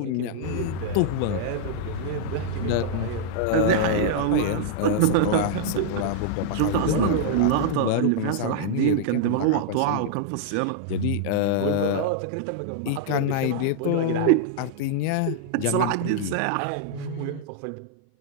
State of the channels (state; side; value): different; both; correlation -0.01